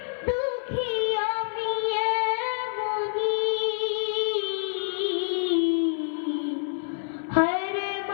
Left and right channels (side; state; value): right; silent; 58 dB below the other